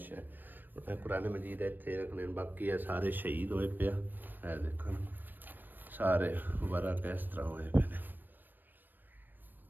ਕੁਰਾਨ ਮਜੀਦ ਇੱਥੇ ਰੱਖਣੇ। ਬਾਕੀ ਇਹ ਸਾਰੇ ਸ਼ਹੀਦ ਹੋਏ ਪਿਆ, ਇਹ ਦੇਖੋ ਸਾਰੇ ਵਰਾ ਕਿਸ ਤਰ੍ਹਾਂ ਹੋਏ ਪਏ ਨੇ।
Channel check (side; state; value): left; late; 0.092 ms